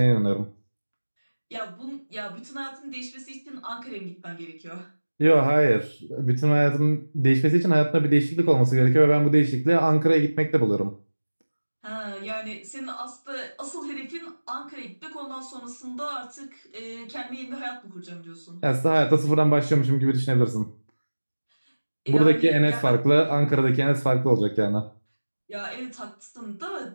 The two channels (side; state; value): both; inverted; correlation -1.00